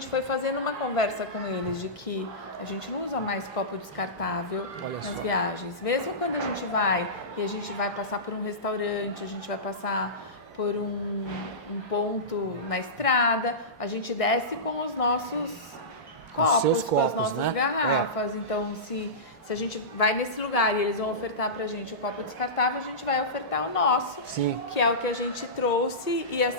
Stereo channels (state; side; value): normal; both; correlation -0.19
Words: foi fazendo uma conversa com eles de que a gente não usa mais copo descartável nas viagens. Mesmo quando a gente vai e a gente vai passar por um restaurante, a gente vai passar por um ponto na estrada, a gente desce com os nossos copos, com as nossas garrafas. Então, se a gente vai nesse lugar e eles vão ofertar pra gente o copo descartável, a gente vai ofertar o nosso, que é o que a gente trouxe e